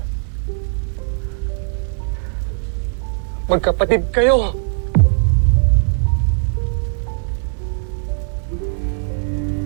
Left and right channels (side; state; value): left; silent; digital silence